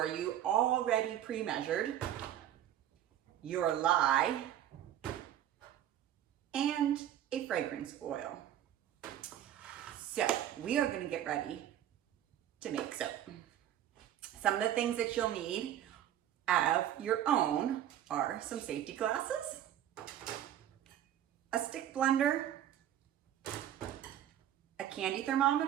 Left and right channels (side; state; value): left; quieter; 11.4 dB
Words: you, already pre-measured, your lye, and a fragrance oil. So we are going to get ready to make soap. Some of the things that you'll need of your own are some safety glasses, a stick blender, a candy